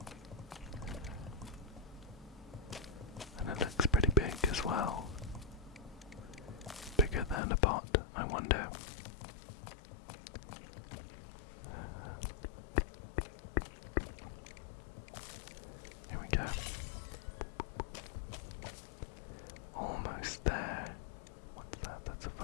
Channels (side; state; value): right; drops out; at 7.4 s